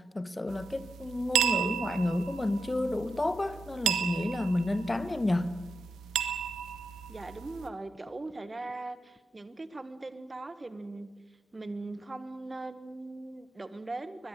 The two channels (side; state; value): both; normal; correlation 0.85